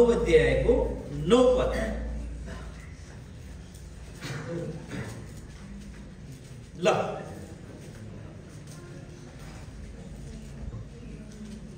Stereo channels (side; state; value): both; identical; correlation 1.00